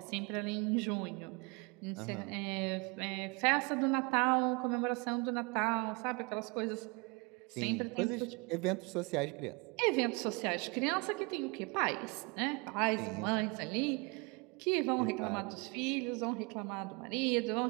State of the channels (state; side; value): quieter; left; 29.2 dB